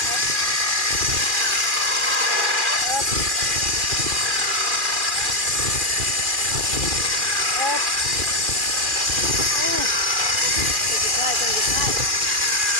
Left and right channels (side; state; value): left; late; 2.4 ms